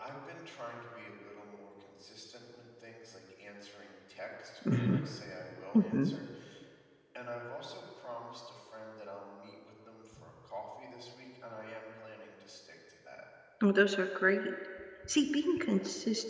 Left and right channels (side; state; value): both; identical; correlation 1.00